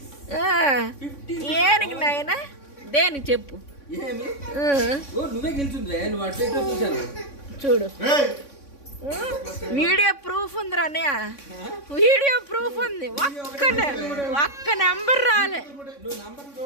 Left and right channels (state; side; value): late; right; 3.6 ms